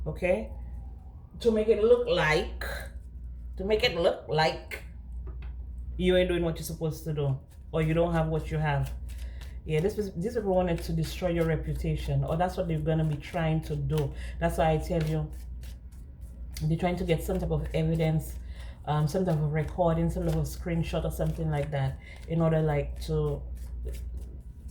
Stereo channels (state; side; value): identical; both; correlation 1.00